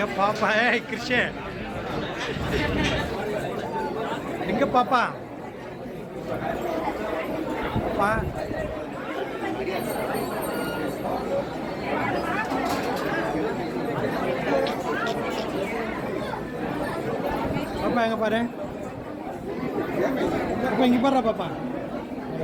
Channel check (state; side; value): identical; both; correlation 1.00